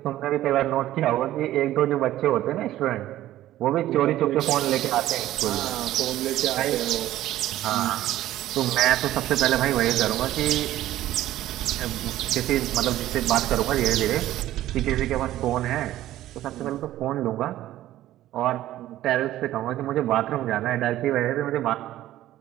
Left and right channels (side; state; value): left; quieter; 14.1 dB